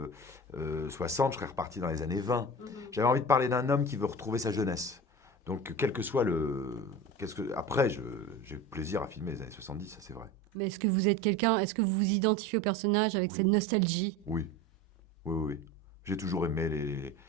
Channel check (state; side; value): normal; both; correlation 0.32